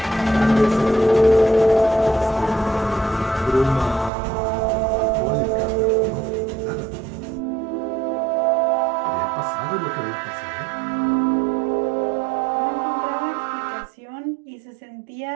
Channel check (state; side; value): drops out; left; at 4.1 s